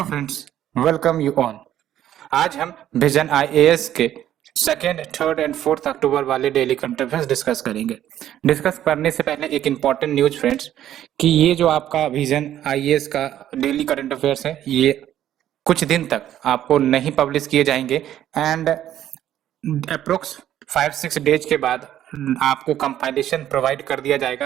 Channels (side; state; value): left; quieter; 11.7 dB